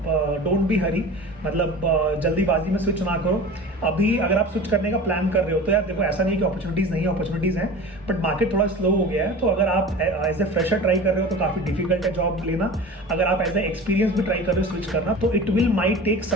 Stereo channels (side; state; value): both; normal; correlation 0.36